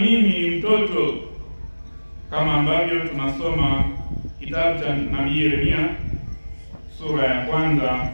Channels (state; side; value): inverted; both; correlation -1.00